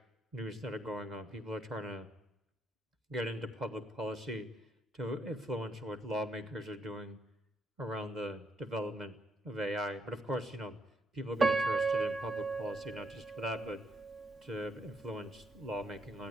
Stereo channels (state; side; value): normal; both; correlation 0.76